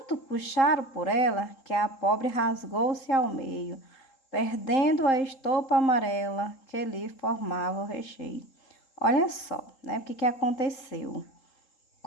puxaram por ela que a pobre rasgou-se ao meio, perdendo a estopa amarela que lhe formava o recheio. Olha só, né, o que aconteceu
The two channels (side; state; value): right; late; 3.8 ms